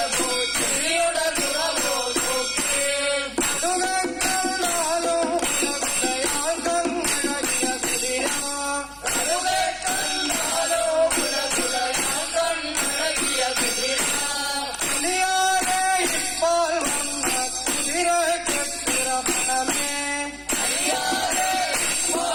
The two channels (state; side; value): identical; both; correlation 1.00